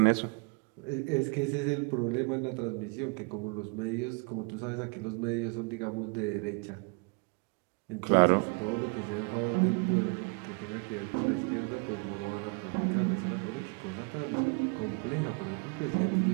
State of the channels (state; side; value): quieter; left; 33.6 dB